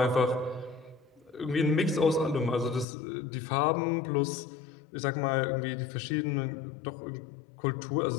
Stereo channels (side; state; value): right; drops out; at 2.9 s